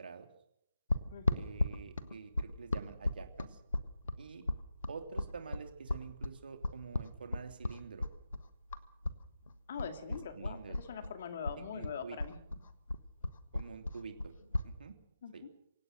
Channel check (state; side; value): inverted; both; correlation -0.90